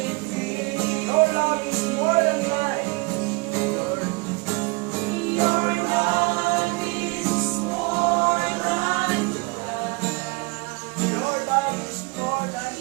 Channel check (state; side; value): quieter; left; 28.2 dB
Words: Your love is more than life. Your love is more than life. Your love is more